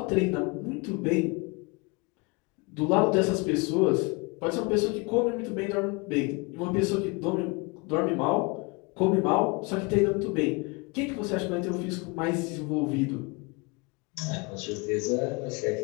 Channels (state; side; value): quieter; right; 28.4 dB